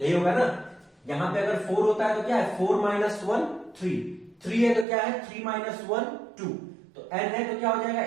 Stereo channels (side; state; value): left; drops out; at 4.9 s